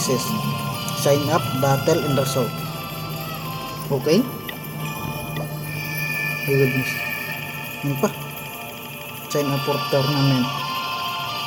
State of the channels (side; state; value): both; identical; correlation 1.00